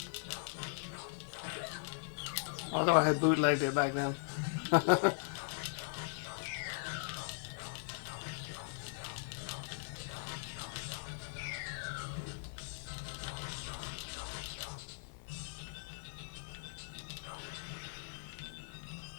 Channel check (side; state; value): right; silent; 51 dB below the other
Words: Although I had bootlegged it back then.